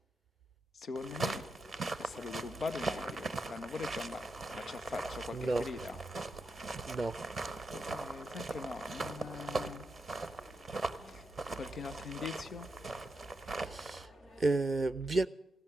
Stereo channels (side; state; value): both; normal; correlation 0.85